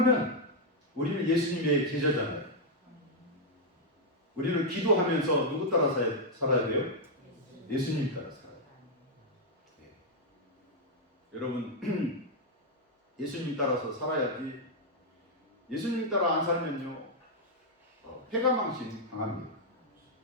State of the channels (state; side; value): normal; both; correlation -0.02